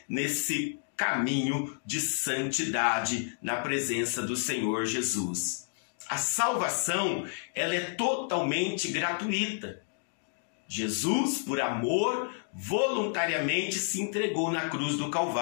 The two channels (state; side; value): silent; right; digital silence